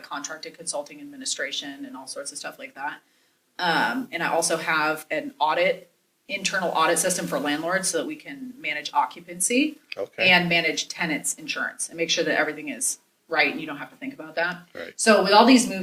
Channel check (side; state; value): both; identical; correlation 1.00